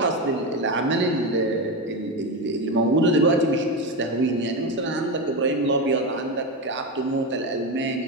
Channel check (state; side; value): normal; both; correlation 0.15